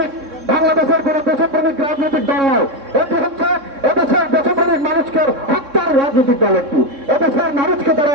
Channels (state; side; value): late; left; 3.6 ms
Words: বাংলাদেশের কোন দেশপ্রেমিক রাজনৈতিক দল নয়, এটি হচ্ছে এদেশের দেশপ্রেমিক মানুষকে হত্যার রাজনৈতিক দল। একটি এদেশের মানুষকে তারা